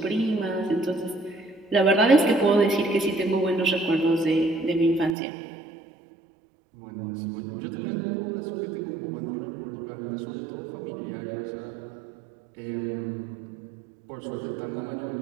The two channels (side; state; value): left; drops out; at 5.1 s